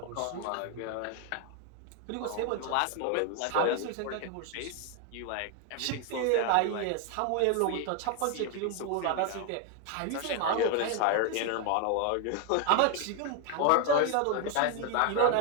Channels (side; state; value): both; different; correlation 0.01